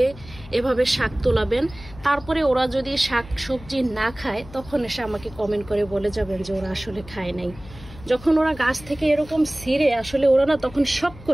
এভাবে শাক তোলাবেন। তারপরে ওরা যদি শাক সবজি না খায় তখন এসে আমাকে কমেন্ট করে বলে যাবেন যে ওরা আসলে খায় নাই। যখন ওরা গাছ থেকে এরকম ছিঁড়ে আসলে ওরা না তখন শখ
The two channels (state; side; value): noise; left; hum, 18 dB below the sound